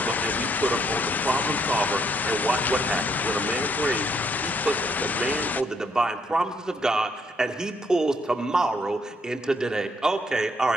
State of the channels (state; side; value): normal; both; correlation 0.71